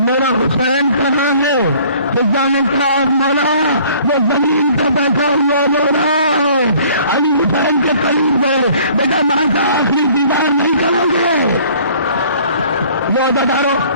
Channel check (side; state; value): both; inverted; correlation -0.55